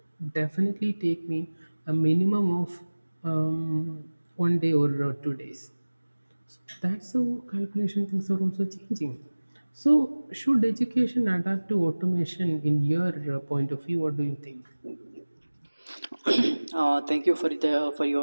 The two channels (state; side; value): inverted; both; correlation -1.00